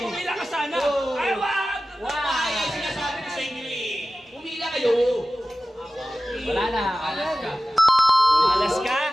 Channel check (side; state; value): both; normal; correlation 0.95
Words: pumila ka sana. Ay, wag! Ay, ay, sinasabi ko sa inyo eh. Pumila kayo. Wala na. Alaska. Alaska?